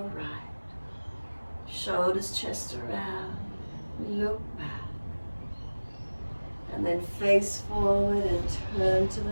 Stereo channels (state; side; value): inverted; both; correlation -1.00